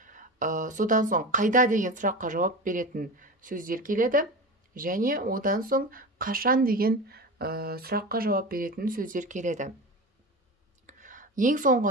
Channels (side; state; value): both; normal; correlation 0.27